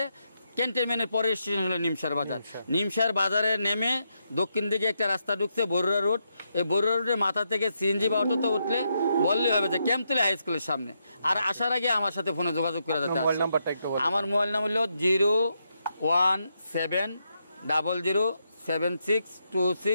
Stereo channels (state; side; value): inverted; both; correlation -0.81